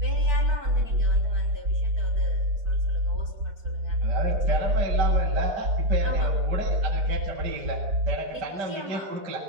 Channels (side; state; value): left; late; 4.6 ms